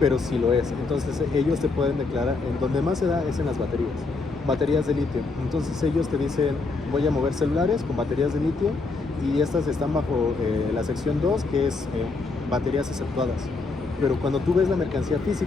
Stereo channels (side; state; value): right; quieter; 3.9 dB